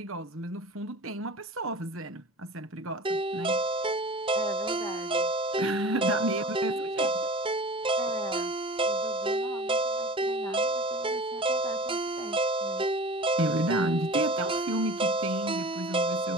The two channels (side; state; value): both; normal; correlation 0.37